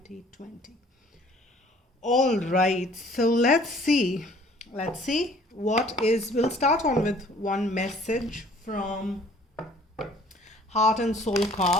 All right, so let's see. We'll start on with one message from Heart and Soul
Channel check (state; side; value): normal; both; correlation 0.55